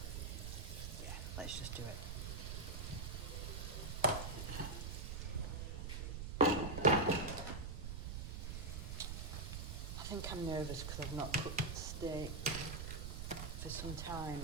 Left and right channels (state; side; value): noise; right; rumble, 4 dB below the sound